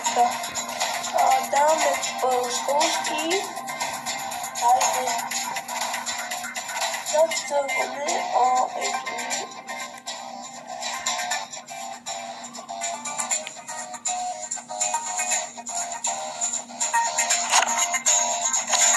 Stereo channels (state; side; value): identical; both; correlation 1.00